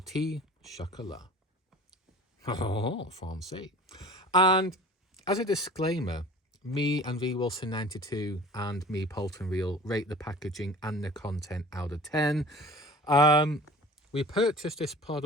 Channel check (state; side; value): normal; both; correlation 0.42